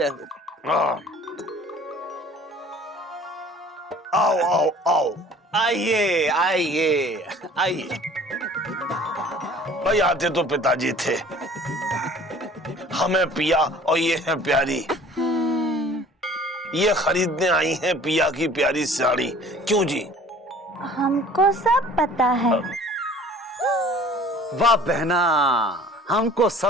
हो। आओ आओ आओ, आइए आइए आइए। भाई आते तो पिताजी थे, हमें पिया और ये है प्यारी, ये खरीदने आई हैं पिया की प्यारी साड़ी। क्यों जी? हमको सब पता है। वाह बहना, हमको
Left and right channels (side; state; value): both; normal; correlation 0.49